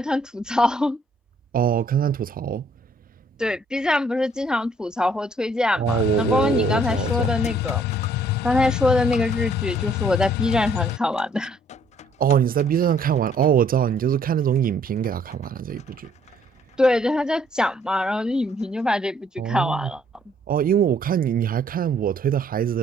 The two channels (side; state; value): both; normal; correlation 0.63